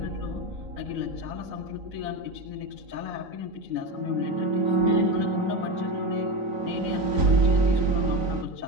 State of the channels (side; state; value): left; late; 3.9 ms